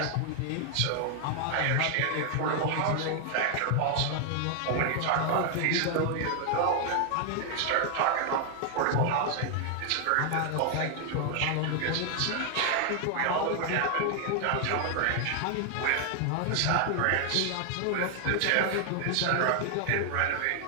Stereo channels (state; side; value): different; both; correlation 0.00